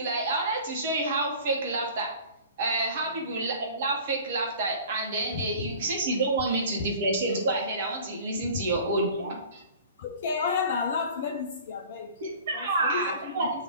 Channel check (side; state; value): both; inverted; correlation -0.44